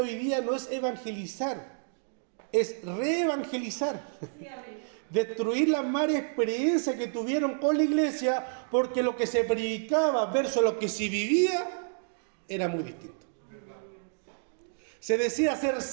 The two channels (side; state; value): left; silent; digital silence